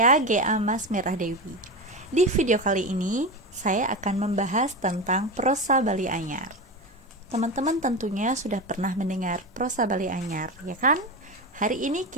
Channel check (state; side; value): normal; both; correlation 0.21